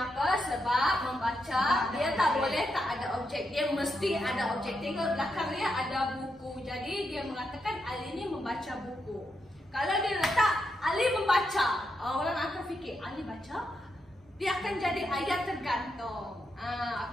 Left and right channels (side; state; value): both; normal; correlation 0.83